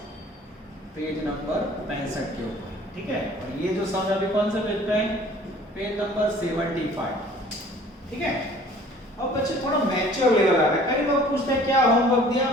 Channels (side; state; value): both; normal; correlation 0.51